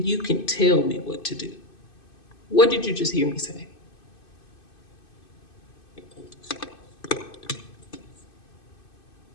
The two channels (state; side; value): late; right; 2.5 ms